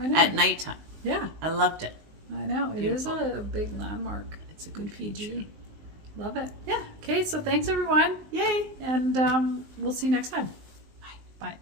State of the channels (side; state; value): left; late; 19 ms